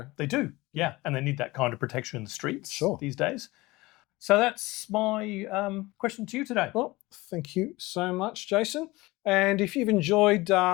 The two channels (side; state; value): right; quieter; 20.9 dB